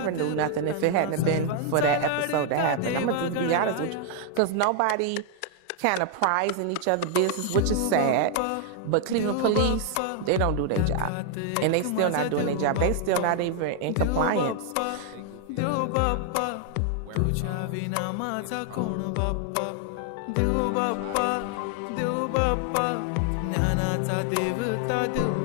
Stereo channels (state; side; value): different; both; correlation 0.00